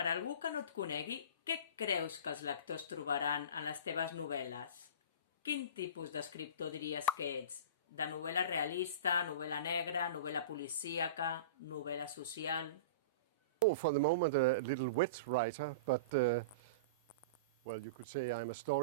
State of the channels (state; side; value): inverted; both; correlation -0.32